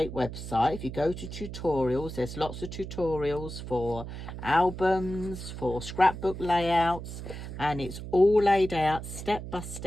website. If you go to tutorials, there's lots of tutorials for albums, for scrapbook layouts, and it's all laid out step by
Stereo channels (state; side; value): noise; right; hum, 9 dB below the sound